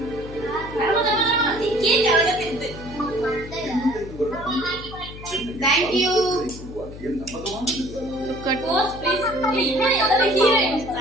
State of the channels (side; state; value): left; noise; hum, 13 dB below the sound